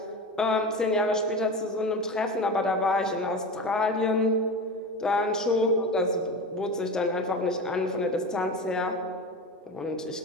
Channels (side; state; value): both; normal; correlation 0.27